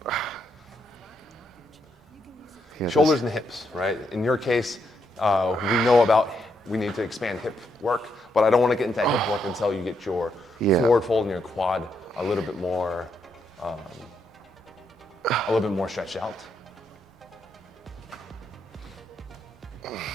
Shoulders and hips, right? In your case, we need to expand hip work, but I don't want to get into hip work until you get your forward fold and your quad a little bit more stretched out.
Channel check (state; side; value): normal; both; correlation 0.78